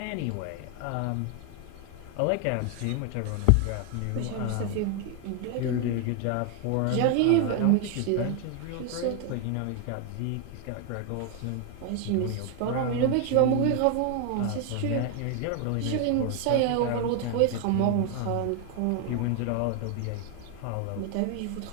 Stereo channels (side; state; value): both; different; correlation 0.01